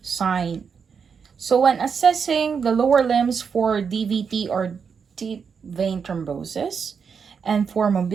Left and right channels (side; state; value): left; quieter; 6.2 dB